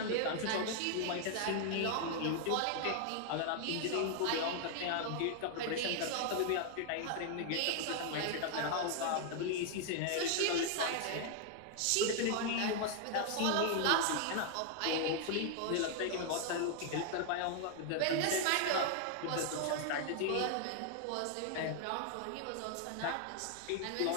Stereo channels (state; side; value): different; both; correlation 0.00